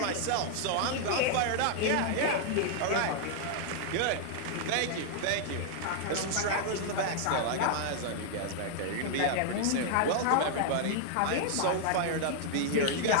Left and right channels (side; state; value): both; different; correlation 0.00